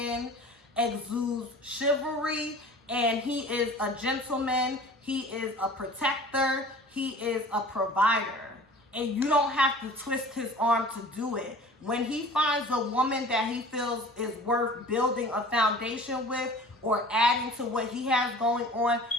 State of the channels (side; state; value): both; normal; correlation 0.44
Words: exudes chivalry, and he is a gentleman, he is a protector, he is a provider. And you don't have to twist his arm to do it. When he finds a woman that he feels is worth building a foundation with, or adding to what he has going on,